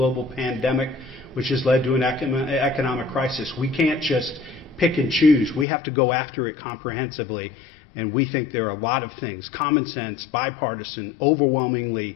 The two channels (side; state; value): right; drops out; at 5.7 s